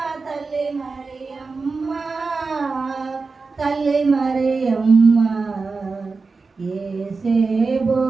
తల్లి మరియమ్మ తల్లి మరియమ్మ ఏసేబో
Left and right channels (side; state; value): left; quieter; 4.2 dB